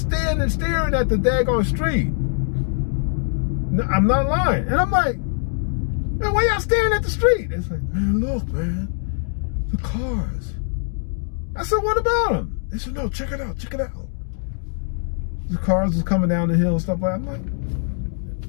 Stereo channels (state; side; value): silent; right; 60 dB below the other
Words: standing, staring at the daggone street. I'm not lying. And I'm like, man, why y'all staring at the street? It's like, man, look, man, the cars. I said, what about them? They said, no, check it out, check it out. The cars was coming down the hill and stuff like that.